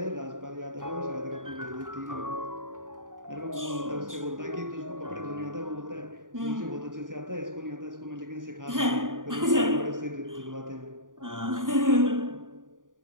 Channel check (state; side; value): late; left; 0.89 ms